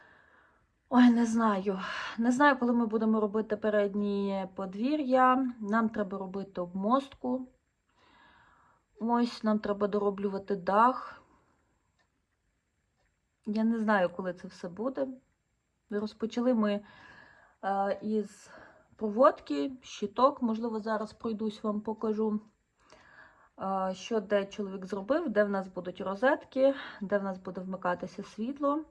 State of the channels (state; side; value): identical; both; correlation 1.00